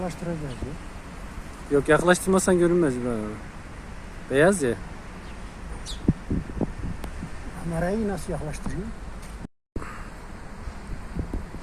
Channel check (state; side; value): identical; both; correlation 1.00